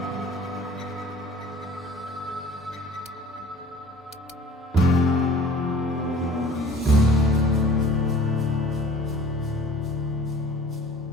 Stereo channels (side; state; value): both; normal; correlation 0.49